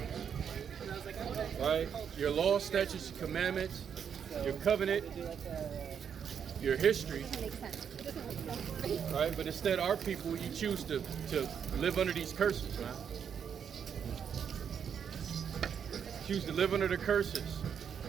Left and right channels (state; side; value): quieter; left; 7.7 dB